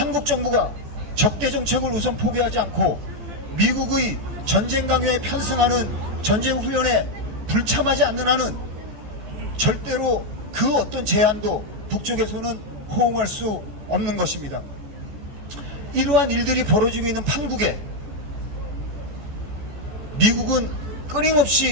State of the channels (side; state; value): left; late; 14 ms